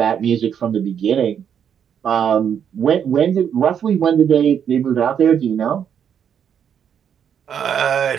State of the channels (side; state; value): left; quieter; 8.3 dB